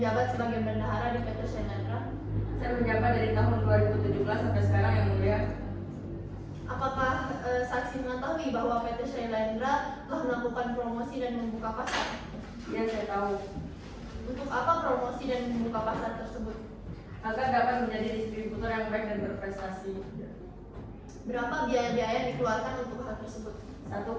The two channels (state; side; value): identical; both; correlation 1.00